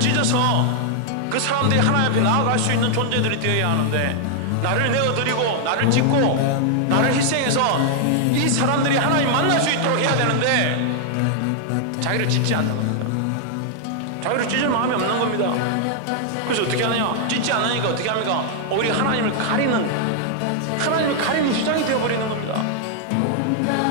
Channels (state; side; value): different; both; correlation 0.00